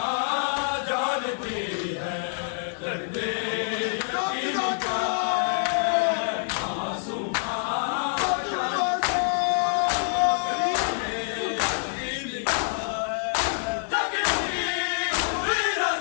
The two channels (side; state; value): right; silent; digital silence